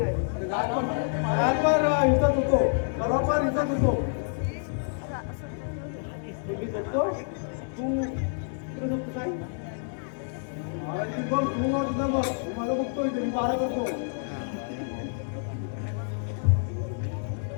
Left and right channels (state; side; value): silent; right; digital silence